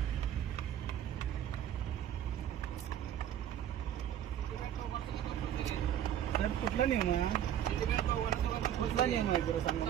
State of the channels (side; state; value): left; quieter; 10.4 dB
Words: सर कुठला नियम आहे? कुठला नियम आहे जरा सांगा.